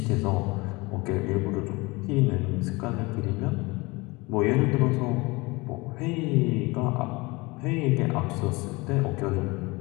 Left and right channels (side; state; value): right; quieter; 24.2 dB